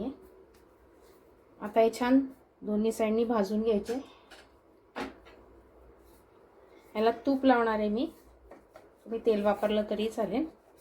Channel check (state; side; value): identical; both; correlation 1.00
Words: आता हे छान दोन्ही साईडनी भाजून घ्यायचे. याला तूप लावणार आहे मी, तुम्ही तेल वापरलं तरी चालेल.